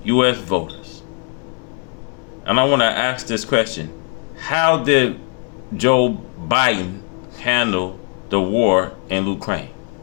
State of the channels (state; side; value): quieter; right; 35.8 dB